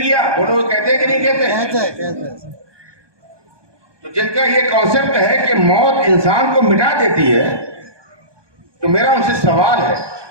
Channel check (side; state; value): left; late; 1.2 ms